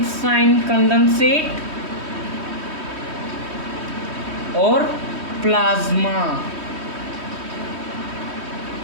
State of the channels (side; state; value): left; late; 3.1 ms